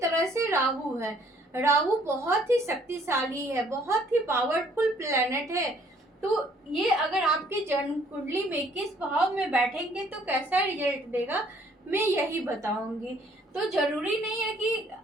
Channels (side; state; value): both; normal; correlation 0.62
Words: से राहु है। राहु बहुत ही शक्तिशाली है, बहुत ही पावरफुल प्लेनेट है। तो ये अगर आपके जन्म कुंडली में किस भाव में बैठेंगे तो कैसा रिजल्ट देगा, मैं यही बताऊंगी। तो जरूरी नहीं है कि,